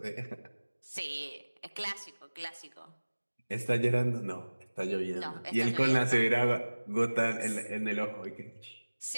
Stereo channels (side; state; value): both; inverted; correlation -1.00